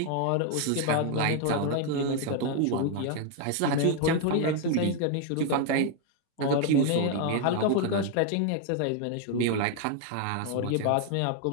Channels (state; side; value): different; both; correlation 0.01